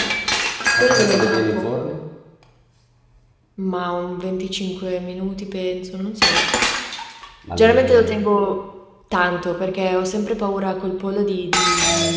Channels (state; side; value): identical; both; correlation 1.00